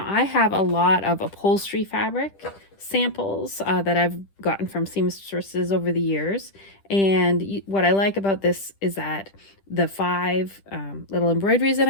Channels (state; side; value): late; right; 10 ms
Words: I have a lot of upholstery fabric samples that I've gotten from seamstresses over the years. And what I like about this is that the 5 little embroideries that